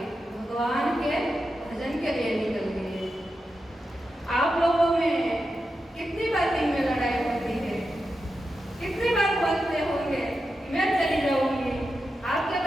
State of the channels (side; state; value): both; normal; correlation 0.89